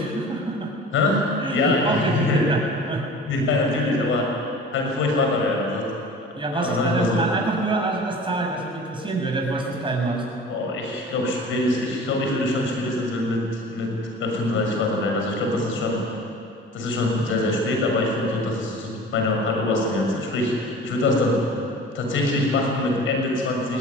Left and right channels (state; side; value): normal; both; correlation 0.41